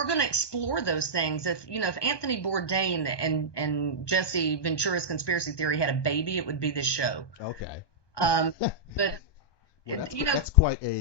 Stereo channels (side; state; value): right; late; 1.2 ms